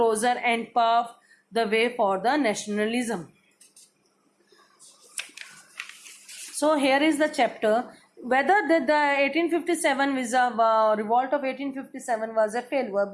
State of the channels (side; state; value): both; identical; correlation 1.00